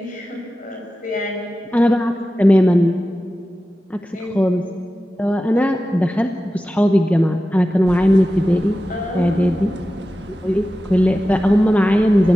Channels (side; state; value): both; normal; correlation 0.94